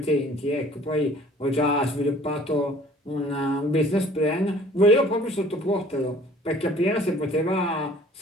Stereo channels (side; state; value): both; normal; correlation 0.52